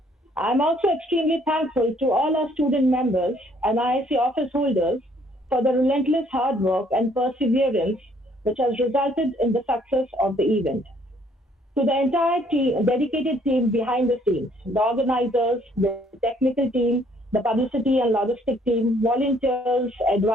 I'm also extremely thankful to all our student members and IIC office holders for the relentless hard work and perseverance which has resulted in the success of the event. To the entire team, dedicated team behind the scenes, the organizers, the technical team, the publicity and logistic team, volunteers,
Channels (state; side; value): normal; both; correlation 0.63